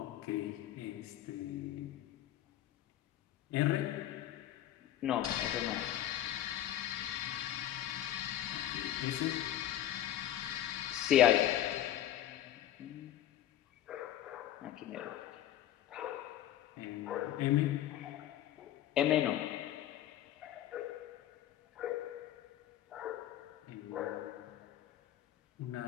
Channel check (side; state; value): right; quieter; 12.2 dB